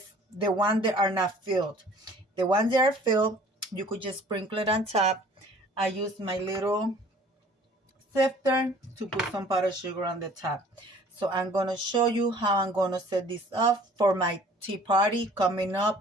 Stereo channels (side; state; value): both; normal; correlation 0.51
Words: the ones that are not filled. The ones that are filled, you could just sprinkle it on top. I use my little sifter to put some powdered sugar on the top. So I'm going to show you how I'm going to set this up for my tea party coming